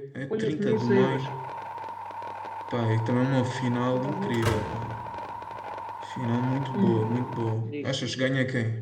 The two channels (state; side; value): identical; both; correlation 1.00